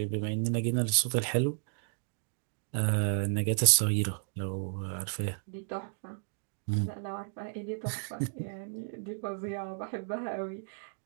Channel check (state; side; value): silent; left; digital silence